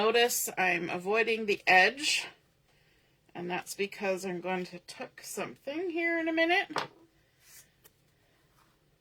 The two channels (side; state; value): both; identical; correlation 1.00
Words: I'm avoiding the edge, and that's because I'm going to tuck something here in a minute.